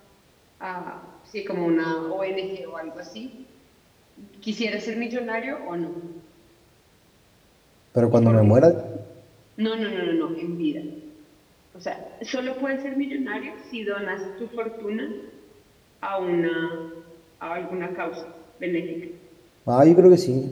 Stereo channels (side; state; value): both; identical; correlation 1.00